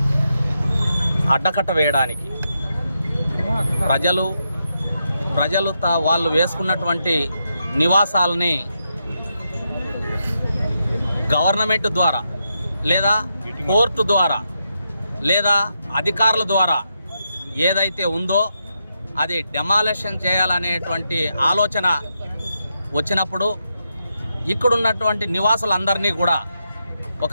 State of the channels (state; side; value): inverted; both; correlation -0.84